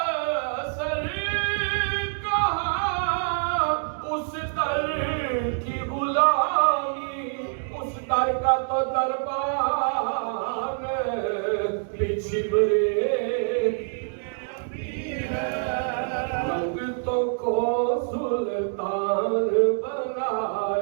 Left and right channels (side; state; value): left; silent; 60 dB below the other